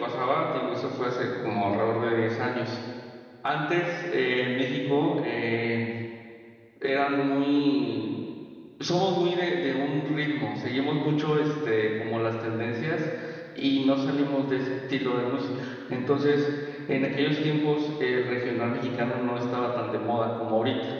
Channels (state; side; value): identical; both; correlation 1.00